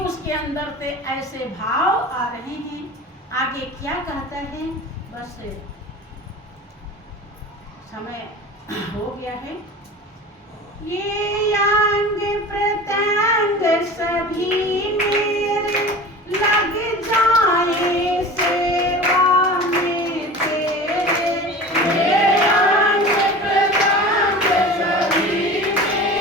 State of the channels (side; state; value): both; normal; correlation 0.36